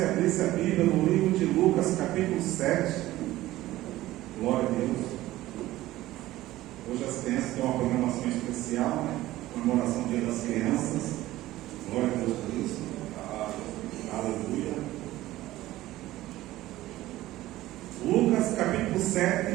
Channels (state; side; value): quieter; left; 16.1 dB